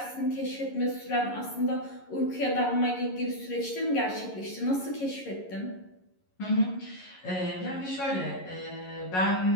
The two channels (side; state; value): right; late; 11 ms